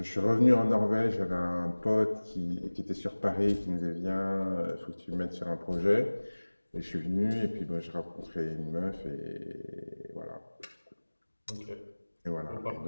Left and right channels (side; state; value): both; inverted; correlation -1.00